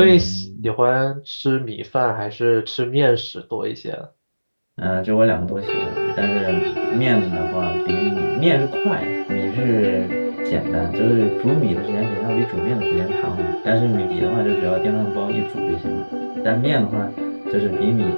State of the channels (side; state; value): both; inverted; correlation -1.00